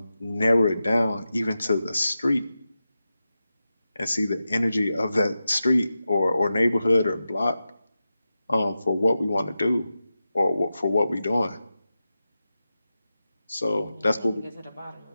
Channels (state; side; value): inverted; both; correlation -0.92